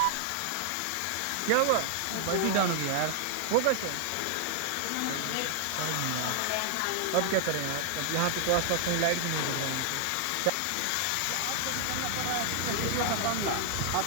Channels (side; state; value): both; different; correlation 0.00